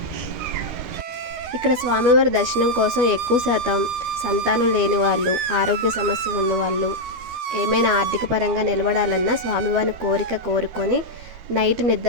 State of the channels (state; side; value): late; left; 13 ms